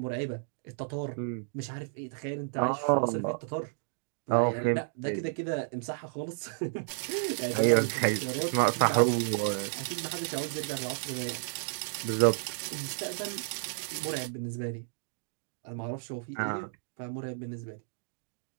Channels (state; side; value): silent; left; digital silence